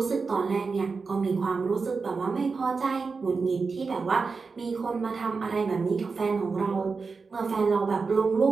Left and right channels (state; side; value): quieter; left; 4.7 dB